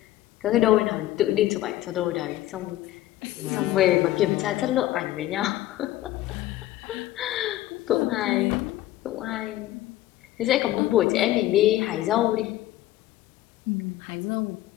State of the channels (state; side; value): quieter; right; 14.9 dB